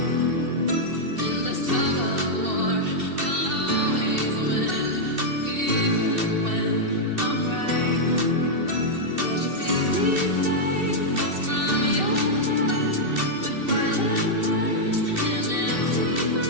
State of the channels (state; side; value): late; left; 2.7 ms